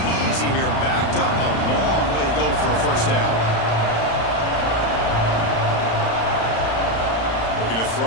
easy here. Backed up a long way to go for a first down. Looking to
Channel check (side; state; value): right; late; 35 ms